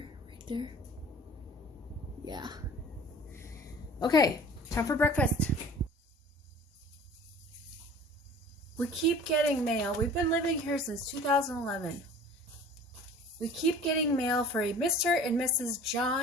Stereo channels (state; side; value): normal; both; correlation 0.44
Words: there. Yeah. Okay, time for breakfast. We keep getting mail. We've been living here since 2011. We keep getting mail for a Mr. and Mrs.